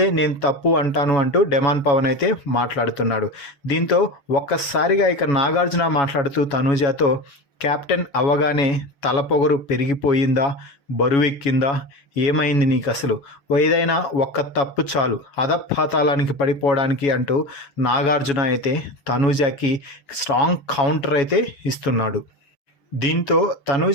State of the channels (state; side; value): late; right; 7.2 ms